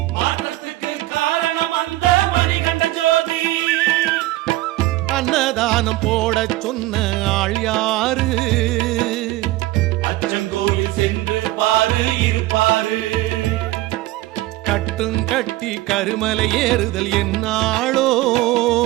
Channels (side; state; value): left; quieter; 17.6 dB